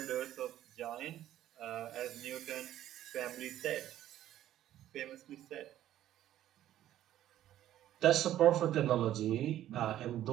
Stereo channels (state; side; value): quieter; left; 12.5 dB